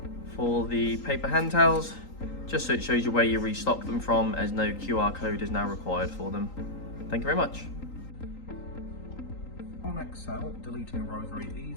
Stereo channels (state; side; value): late; right; 3.8 ms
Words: for the paper hand towels, just so it shows you where you restock them from, as no QR code is now required for them. Thank you very much. On Excel, deleting a row is very